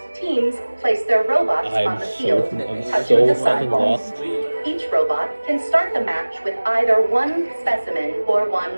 Teams place their robots on the field, touching the sidewalls. Each robot can start the match with either one specimen or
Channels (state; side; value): inverted; both; correlation -1.00